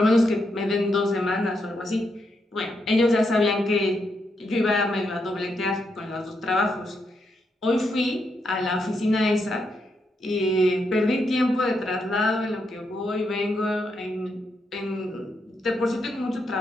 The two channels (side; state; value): both; normal; correlation 0.81